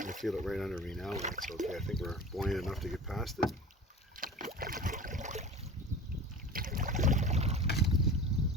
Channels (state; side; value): normal; both; correlation 0.36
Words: feel it right under me now. That's okay. I think we're buoyant enough to get past it.